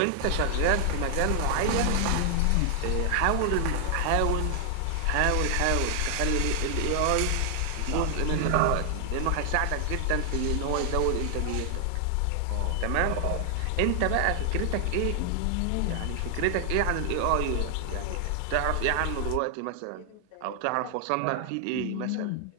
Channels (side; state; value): both; different; correlation 0.00